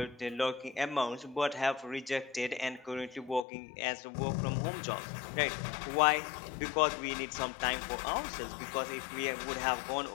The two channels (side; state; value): right; drops out; at 3.5 s